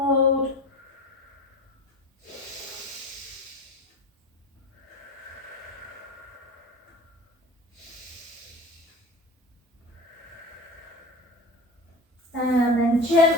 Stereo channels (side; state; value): both; normal; correlation 0.35